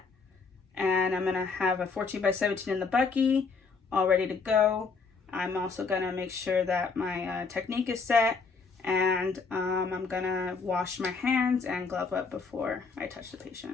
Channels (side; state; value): right; quieter; 4.8 dB